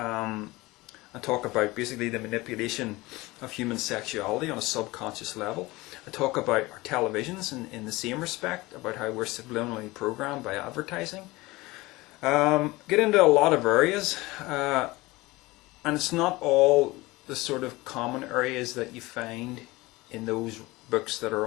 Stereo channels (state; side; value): quieter; right; 21.0 dB